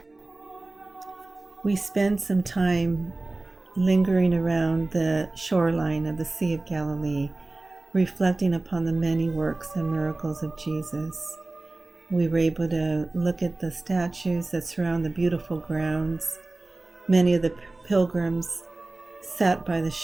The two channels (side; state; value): left; quieter; 3.0 dB